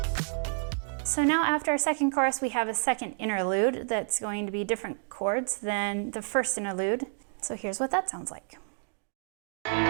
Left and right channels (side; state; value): left; silent; digital silence